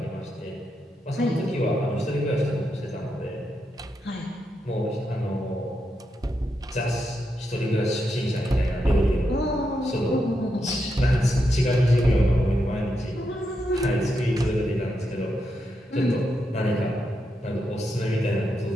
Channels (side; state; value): both; normal; correlation 0.84